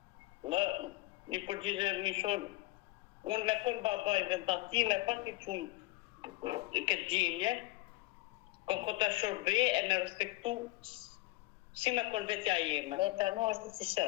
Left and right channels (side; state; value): right; quieter; 20.7 dB